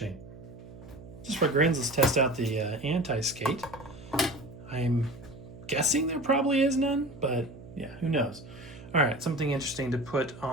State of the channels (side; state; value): right; noise; hum, 17 dB below the sound